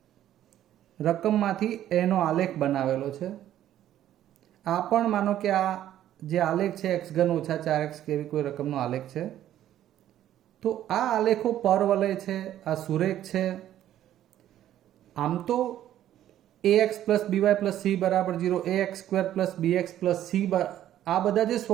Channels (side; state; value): left; quieter; 12.0 dB